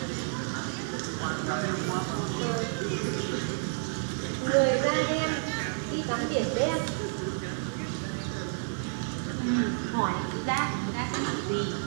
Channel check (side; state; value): left; silent; digital silence